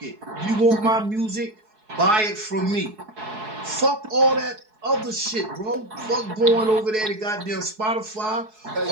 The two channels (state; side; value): late; left; 4.7 ms